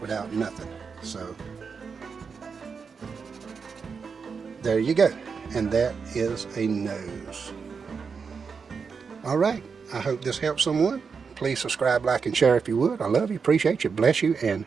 nothing. So there you go, and that is a nose. All right, I hope this helps someone. Please subscribe, like, and share if you would. I love you, appreciate you, bless you, and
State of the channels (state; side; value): quieter; left; 5.6 dB